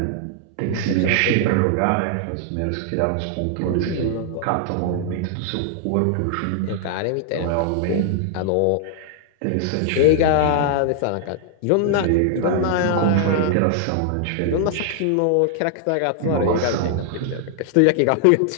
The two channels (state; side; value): different; both; correlation 0.00